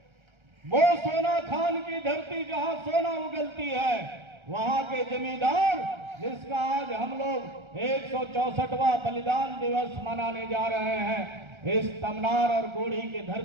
वो सोना खान की धरती जहां सोना उगलती है, वहां के जमींदार, जिसका आज हम लोग 164वां बलिदान दिवस मनाने जा रहे हैं इस तमनार और गोढ़ी की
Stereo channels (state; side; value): late; left; 1.3 ms